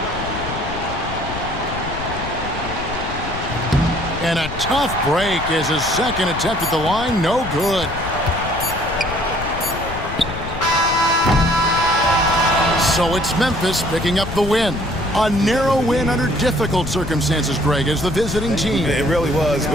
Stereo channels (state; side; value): noise; left; rumble, 9 dB below the sound